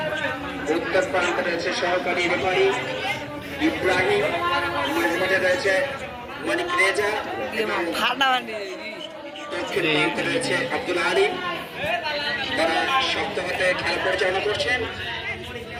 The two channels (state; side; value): identical; both; correlation 1.00